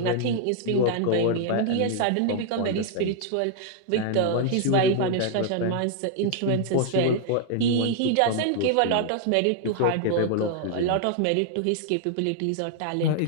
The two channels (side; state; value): both; different; correlation 0.00